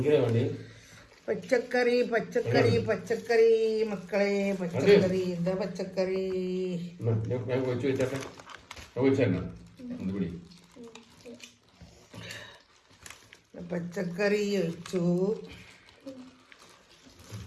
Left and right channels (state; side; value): identical; both; correlation 1.00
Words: പച്ചക്കറി പച്ചക്കറി പച്ചക്കറി മക്കളെ, പച്ചക്കറി. എന്താ പച്ചക്കറി? പച്ചക്കറി ഒഴിച്ചു.